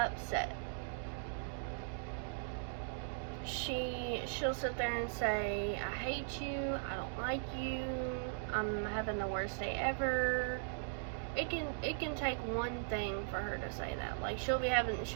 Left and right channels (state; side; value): silent; left; digital silence